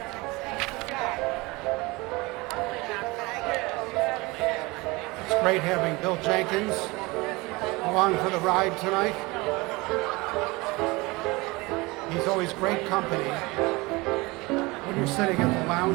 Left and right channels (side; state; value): left; quieter; 23.6 dB